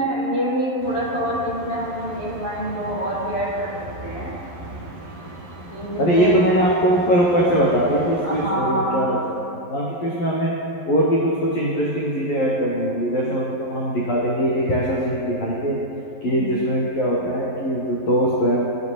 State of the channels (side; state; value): right; late; 11 ms